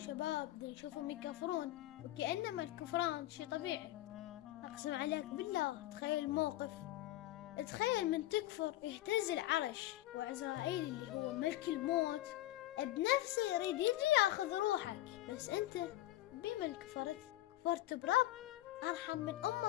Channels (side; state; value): right; quieter; 15.6 dB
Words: نشوفهم يكفرون وكأنما الكفران شي طبيعي. أقسم عليك بالله تخيل الموقف، تخيل من تكفر يهتز العرش وعزرائيل اللي هو ملك الموت بنفسه يريد يجي ياخذ روحك، بس أنت بمن كفرت؟ كفرت برب أرحم من